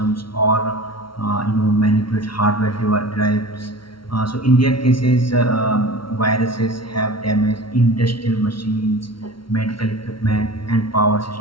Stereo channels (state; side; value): late; right; 0.74 ms